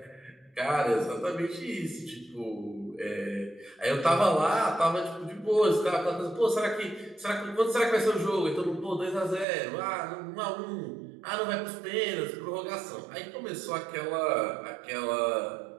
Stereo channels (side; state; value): left; drops out; at 9.5 s